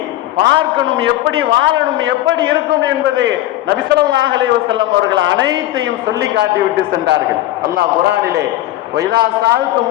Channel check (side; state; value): right; quieter; 15.0 dB